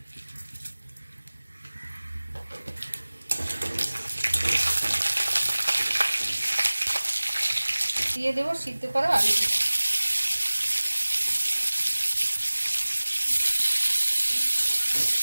দিয়ে দেবো সিদ্ধ করা আলুগুলো।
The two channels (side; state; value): both; inverted; correlation -1.00